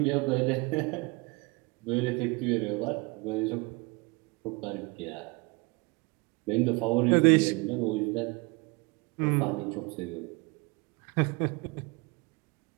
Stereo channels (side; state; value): left; quieter; 27.1 dB